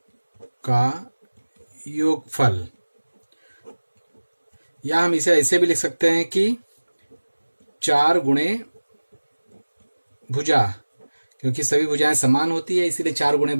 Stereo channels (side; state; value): both; inverted; correlation -1.00